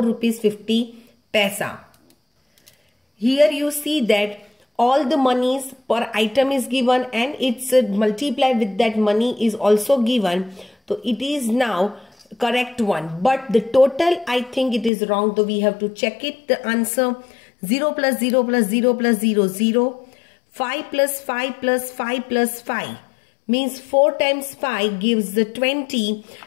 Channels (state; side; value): drops out; right; at 14.9 s